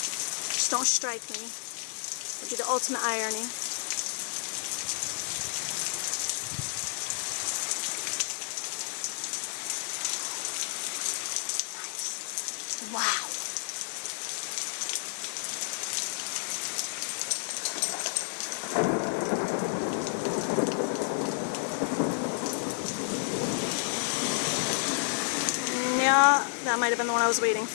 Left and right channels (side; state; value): right; silent; 57 dB below the other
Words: Just don't strike me. I'll do the ultimate irony. Nice. Wow. Yeah, that might have been the one I was waiting